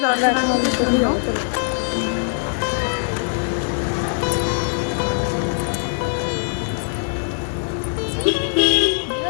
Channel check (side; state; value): right; silent; digital silence